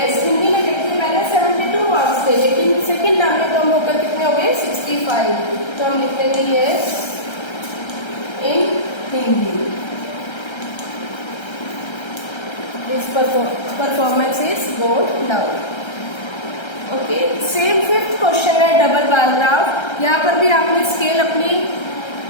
हिंदी में देखिए पहले 72 मार्क्स थे, लेकिन सेकंड टर्म में कम होकर कितने हो गए, 65। तो हम लिख देंगे yes in Hindi. His performance is gone down. Okay, same 5th question है डबल बार ग्राफ। यहाँ पर भी आपने स्केल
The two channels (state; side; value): late; right; 1.3 ms